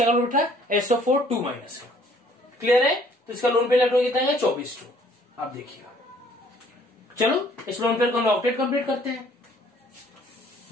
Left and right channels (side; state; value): both; normal; correlation 0.59